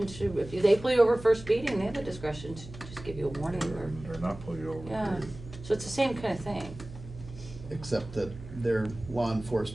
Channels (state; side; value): noise; right; hum, 15 dB below the sound